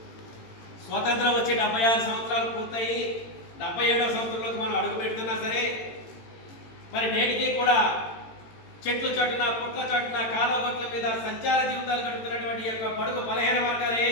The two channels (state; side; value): late; right; 18 ms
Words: స్వాతంత్రం వచ్చి 76 సంవత్సరాలు పూర్తయి 77వ సంవత్సరంలోకి మనం అడుగు పెడుతున్నా సరే, మరి నేటికి కూడా చెట్లు చాటున, పుట్ల చాటున, కాలగొట్ల మీద సంచార జీవితాలు గడుపుతున్నటువంటి ఈ యొక్క బడుగు బలహీన వర్గాలు